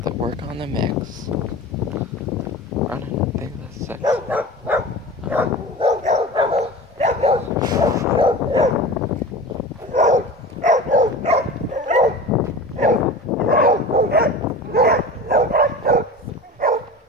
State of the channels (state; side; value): normal; both; correlation 0.34